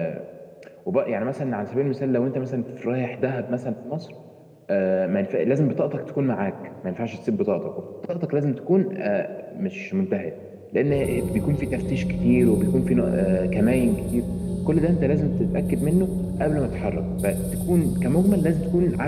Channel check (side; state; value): both; identical; correlation 1.00